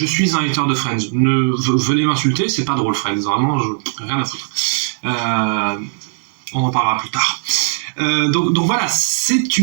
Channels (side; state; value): left; silent; digital silence